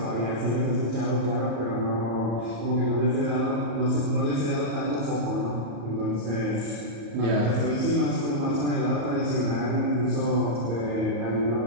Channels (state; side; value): late; left; 35 ms